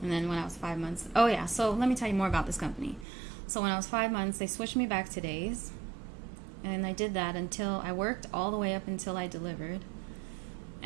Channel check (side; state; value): left; drops out; at 3.1 s